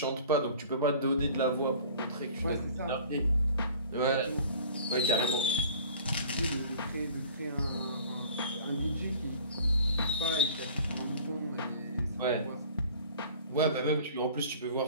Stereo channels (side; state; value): both; inverted; correlation -0.47